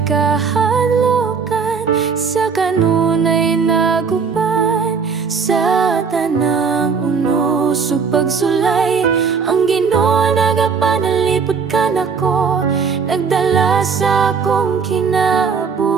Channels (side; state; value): left; quieter; 5.7 dB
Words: kahalokan, sa kanunay naguban. Sa tanang unos ug pagsulay, ang Ginoo nagapanalipod ka nako, nagdala sa akong